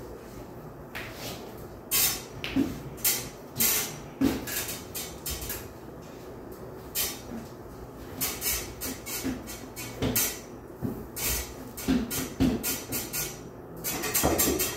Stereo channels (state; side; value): identical; both; correlation 1.00